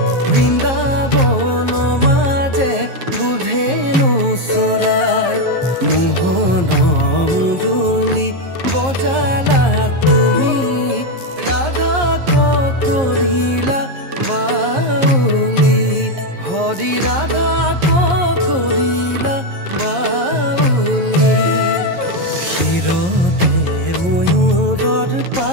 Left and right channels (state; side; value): late; left; 11 ms